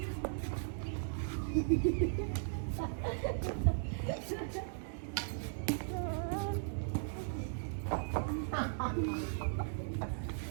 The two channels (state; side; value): silent; left; digital silence